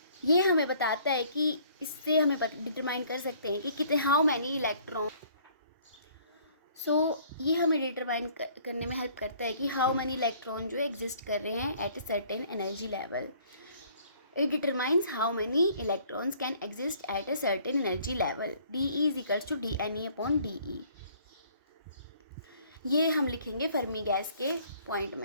ये हमें बताता है कि इससे हमें डिटरमाइन कर सकते हैं कि कितने हाउ मैनी इलेक्ट्रॉन। ये हमें डिटरमाइन करने में हेल्प करता है कि हाउ मैनी इलेक्ट्रॉन जो एग्जिस्ट कर रहे हैं at a certain energy level. It determines how many electrons can exist at a certain energy level. DE is equals to DNE upon DE। ये हम लिखेंगे फर्मी गैस के पॉइंट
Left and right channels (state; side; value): inverted; both; correlation -0.58